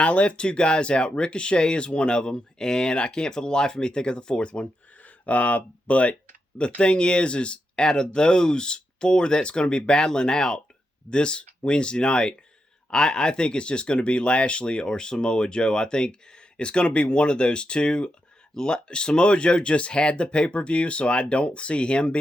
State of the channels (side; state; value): both; normal; correlation 0.85